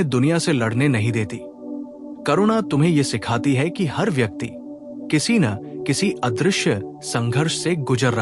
दुनिया से लड़ने नहीं देती। करुणा तुम्हें यह सिखाती है कि हर व्यक्ति किसी न किसी अदृश्य संघर्ष से गुजर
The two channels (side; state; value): both; identical; correlation 1.00